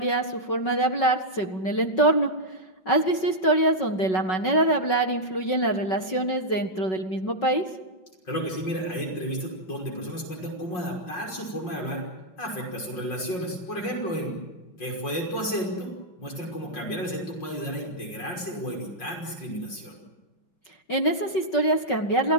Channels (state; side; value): late; right; 5.5 ms